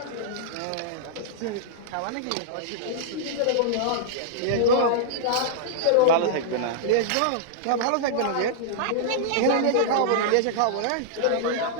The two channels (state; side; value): different; both; correlation -0.01